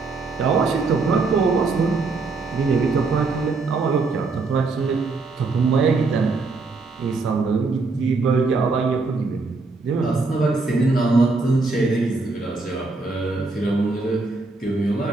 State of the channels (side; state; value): left; quieter; 3.8 dB